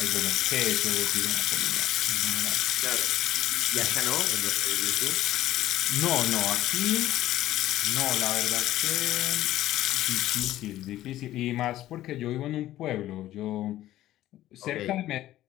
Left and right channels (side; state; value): right; quieter; 14.2 dB